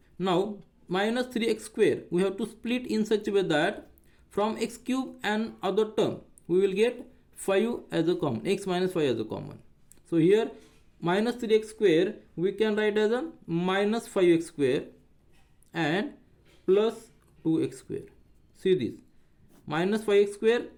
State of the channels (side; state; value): both; identical; correlation 1.00